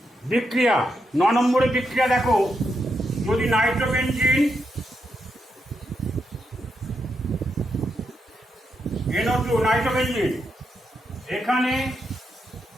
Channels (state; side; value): normal; both; correlation 0.83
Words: বিক্রিয়া, 9 নম্বরের বিক্রিয়া দেখো, যদি নাইট্রোবেনজিন NO2 নাইট্রোবেনজিন, এখানে